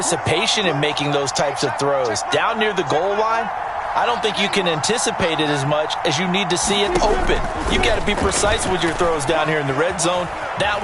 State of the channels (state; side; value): identical; both; correlation 1.00